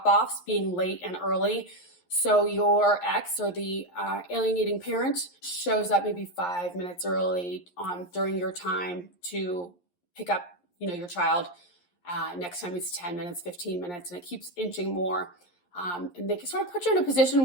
being late and early. So your ex or the alienating parent shows up maybe 5 minutes early during your time to pick up, your child. Next time it's 10 minutes, 15 minutes, and it keeps inching more. And they can sort of put you in a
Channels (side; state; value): right; late; 11 ms